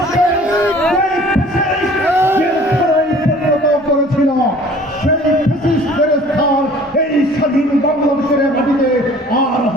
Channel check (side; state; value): both; normal; correlation 0.50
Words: করেছিল সেই ফ্যাসিস্টের স্থান এই স্বাধীন বাংলাদেশের মাটিতে আর